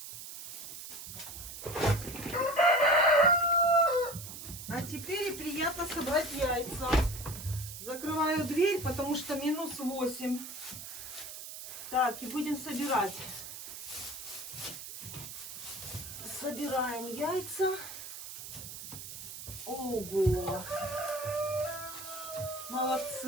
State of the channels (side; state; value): right; noise; hiss, 10 dB below the sound